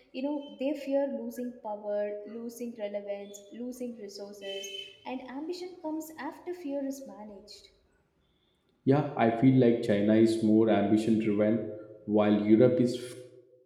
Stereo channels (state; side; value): identical; both; correlation 1.00